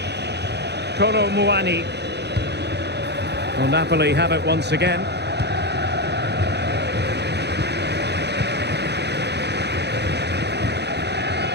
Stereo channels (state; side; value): late; left; 0.49 ms